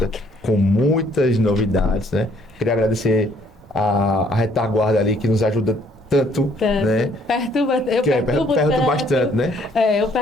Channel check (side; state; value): both; normal; correlation 0.64